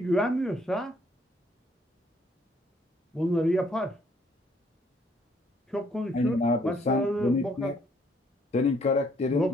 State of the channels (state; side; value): normal; both; correlation 0.66